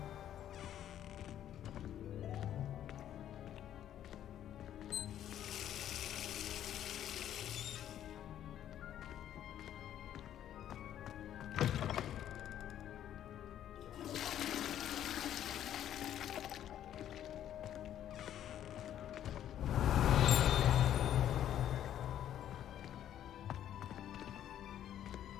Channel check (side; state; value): right; quieter; 11.0 dB